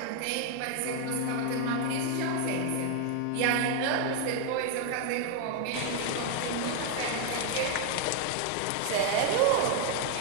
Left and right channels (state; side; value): different; both; correlation 0.00